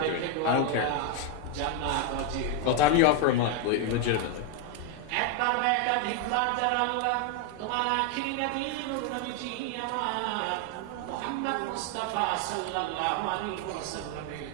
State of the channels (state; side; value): different; both; correlation 0.01